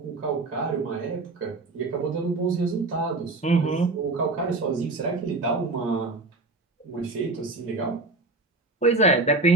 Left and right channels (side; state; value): left; quieter; 3.4 dB